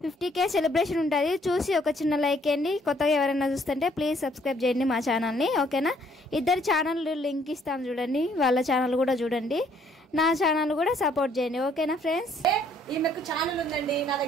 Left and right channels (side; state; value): both; normal; correlation 0.64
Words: 50K సెలబ్రేషన్ ఉంటుంది, చూసి ఒక చిన్న లైక్ చేయండి. కొత్తగా ఎవరైనా చూస్తుంటే ప్లీజ్ సబ్స్క్రైబ్ చేయండి మా ఛానల్ని, ఓకేనా? ఇద్దరు ఛానల్ లింక్ ఇస్తాను చూడండి, వాళ్ళ ఛానల్ కూడా చూడండి, నా ఛానల్ కూడా సపోర్ట్ చేయండి, ఓకేనా ఫ్రెండ్స్? ఈమెకు ఛానల్ ఉందండి, నా